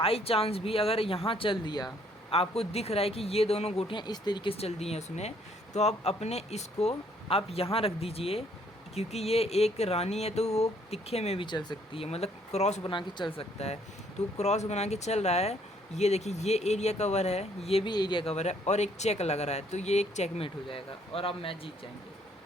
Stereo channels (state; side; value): normal; both; correlation 0.65